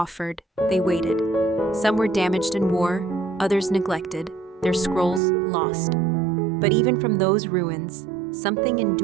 they waited. Some were damaged in war, others neglected, their scrolls lost. But even from those ruins, something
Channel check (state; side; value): drops out; left; at 5.2 s